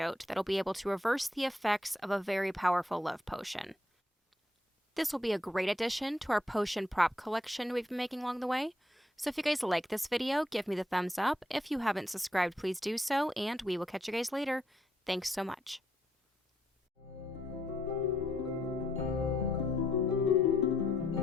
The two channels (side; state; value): both; normal; correlation 0.73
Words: that'll be able to reverse the effects of a very powerful love potion. This will be a great addition to our potion prop collection we've been making along the way. So if you guys like this video, give me the thumbs up. If you haven't subscribed, please do so, and we will catch you guys later. Thanks so much.